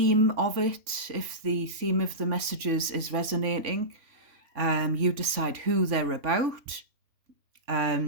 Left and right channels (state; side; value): late; left; 3.5 ms